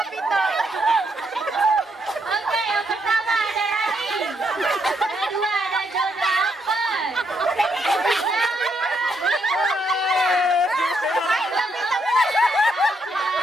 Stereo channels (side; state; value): both; normal; correlation 0.76